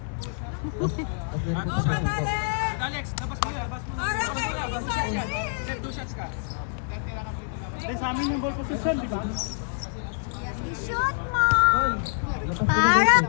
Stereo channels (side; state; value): right; silent; digital silence